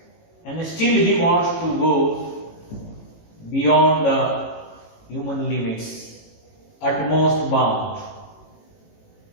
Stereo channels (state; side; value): late; right; 18 ms